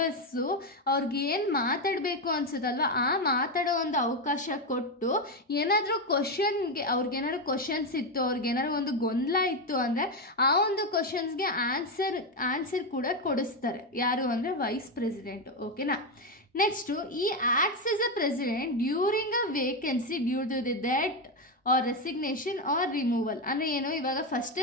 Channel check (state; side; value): normal; both; correlation 0.09